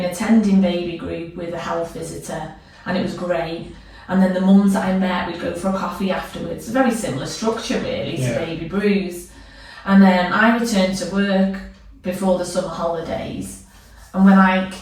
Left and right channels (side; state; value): both; identical; correlation 1.00